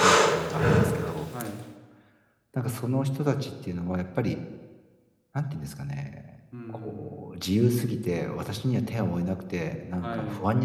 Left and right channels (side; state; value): both; identical; correlation 1.00